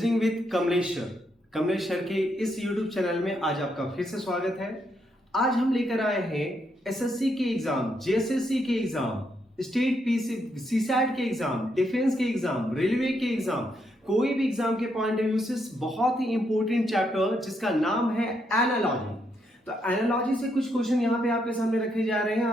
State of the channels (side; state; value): both; normal; correlation 0.78